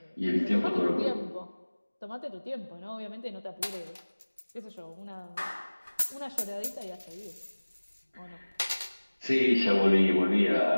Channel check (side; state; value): both; inverted; correlation -1.00